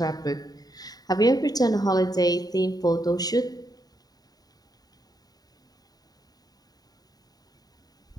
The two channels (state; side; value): late; right; 0.18 ms